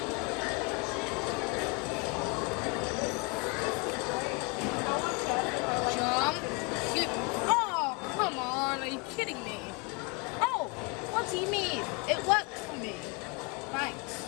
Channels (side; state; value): right; quieter; 31.0 dB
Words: Kidding me? Oh, what do you mean? It worked for me. Thanks.